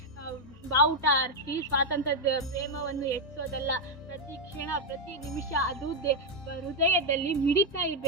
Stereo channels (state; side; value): normal; both; correlation 0.02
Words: ಬಾವುಟ ಹಾರಿಸಿ ಸ್ವಾತಂತ್ರ್ಯದ ಪ್ರೇಮವನ್ನು ಹೆಚ್ಚೋದಲ್ಲ. ಪ್ರತಿ ಕ್ಷಣ, ಪ್ರತಿ ನಿಮಿಷ ಅದು ಹೃದಯದಲ್ಲಿ ಮಿಡಿತಾ